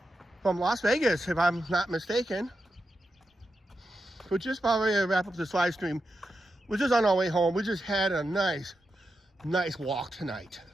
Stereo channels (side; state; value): both; normal; correlation 0.88